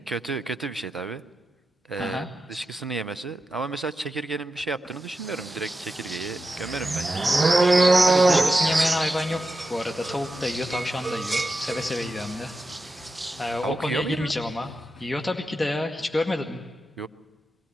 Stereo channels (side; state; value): both; normal; correlation 0.90